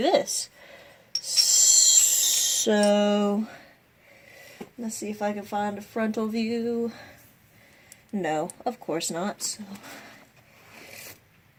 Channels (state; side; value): identical; both; correlation 1.00